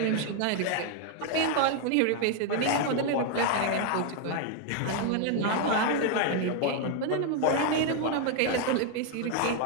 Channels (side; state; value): both; different; correlation 0.01